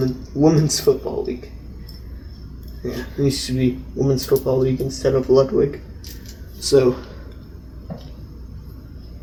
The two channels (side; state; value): both; identical; correlation 1.00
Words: women's football league. Yeah, it used to be women's football league instead of Ludwig. So,